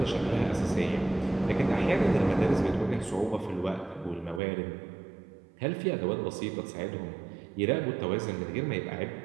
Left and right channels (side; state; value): left; drops out; at 4.4 s